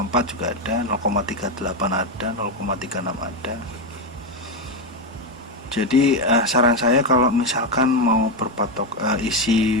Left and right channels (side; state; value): both; normal; correlation 0.09